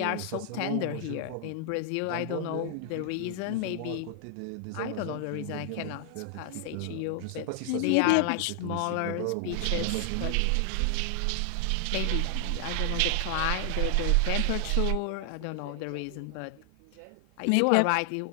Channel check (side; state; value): both; different; correlation 0.00